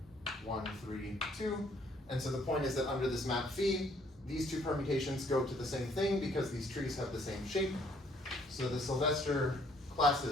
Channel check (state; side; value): normal; both; correlation 0.64